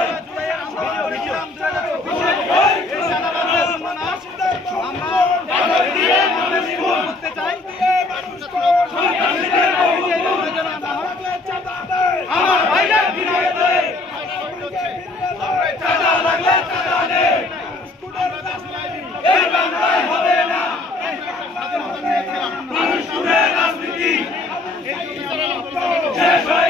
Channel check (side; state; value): right; quieter; 3.1 dB